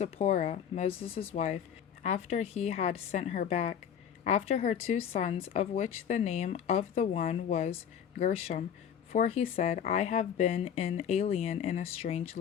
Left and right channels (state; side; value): quieter; right; 8.4 dB